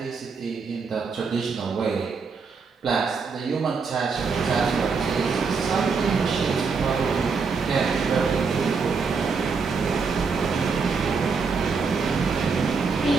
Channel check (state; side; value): quieter; left; 5.1 dB